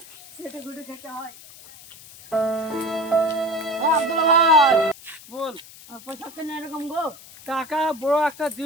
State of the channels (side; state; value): left; noise; hiss, 19 dB below the sound